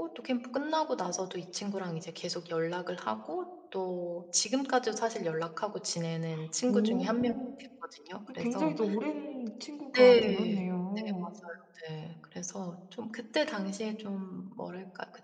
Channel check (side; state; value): both; identical; correlation 1.00